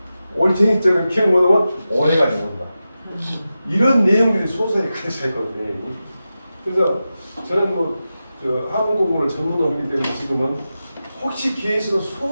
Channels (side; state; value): both; inverted; correlation -0.92